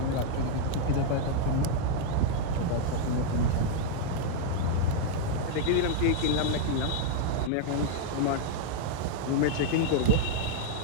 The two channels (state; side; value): different; both; correlation 0.00